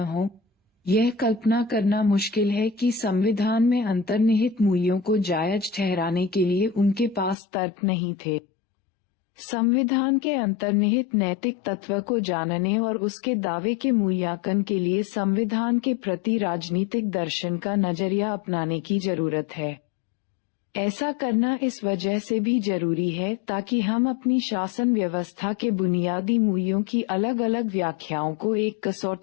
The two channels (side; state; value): right; drops out; at 7.4 s